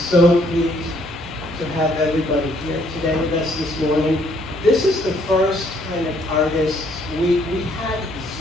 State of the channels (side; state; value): both; normal; correlation 0.66